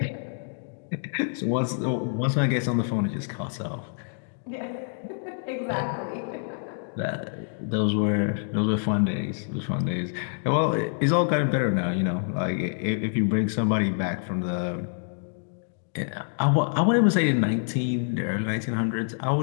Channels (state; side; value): silent; right; digital silence